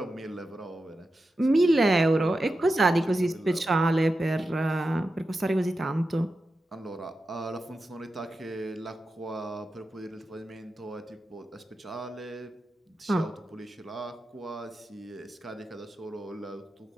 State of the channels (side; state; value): both; normal; correlation 0.91